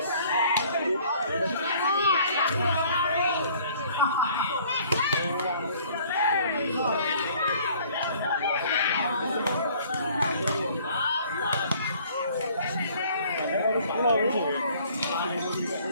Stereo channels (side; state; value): both; inverted; correlation -0.56